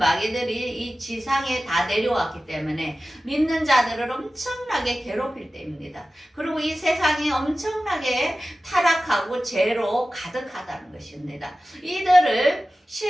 이 지상에 다 내려왔기 때문에 믿는 자들을 엄청나게 괴롭힐 때입니다. 그리고 이 세상이 엄청나게 타락하고 죄로 가득하다는 것입니다. 이들을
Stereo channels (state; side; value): normal; both; correlation 0.95